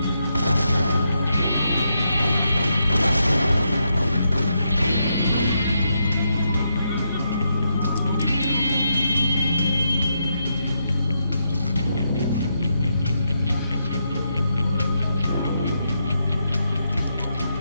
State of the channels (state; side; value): inverted; both; correlation -0.81